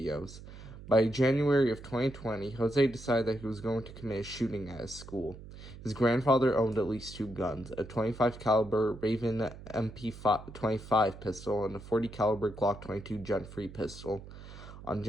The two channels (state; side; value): noise; right; hum, 15 dB below the sound